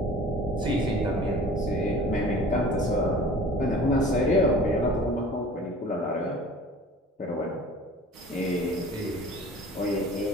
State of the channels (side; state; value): both; normal; correlation 0.44